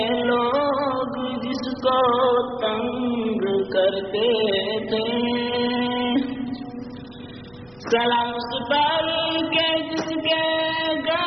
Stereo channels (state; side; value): noise; right; hum, 30 dB below the sound